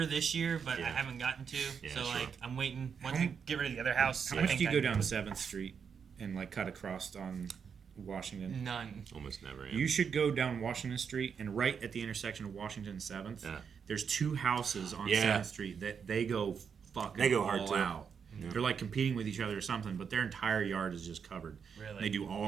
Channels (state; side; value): quieter; left; 6.7 dB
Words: this year, but I Yeah. haven't gotten to. Yeah, so sure. like I'm waiting. Once we get rid of the other house, How I much think do you I go can down 7th Street and like cut across on Washington? None. Almost never. Yeah. You should go down Washington Street, and right at the intersection of Washington and 7th, Yeah. there's 2 houses on Yeah. 7th Street that they go fucking They go all hard, too. out. They're like competing with each other or something, but their entire yard is just covered. Really? They do